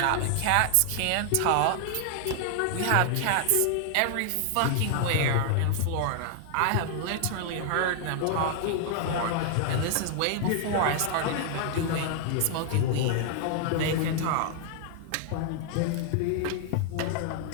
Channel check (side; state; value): both; different; correlation 0.00